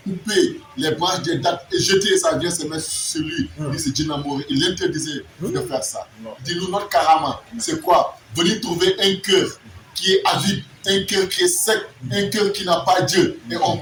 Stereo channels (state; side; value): identical; both; correlation 1.00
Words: coupait les branches des dattes et jeter ça vient se mettre sur lui, c'est Djinamori. Il interdisait de faire ça. Dis-nous, notre karama, c'est quoi? Venir trouver un cœur qui est avide, un cœur qui est sec, un cœur qui n'a pas Dieu. Et on